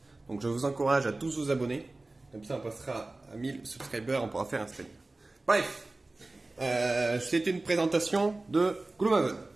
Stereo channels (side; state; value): left; quieter; 3.0 dB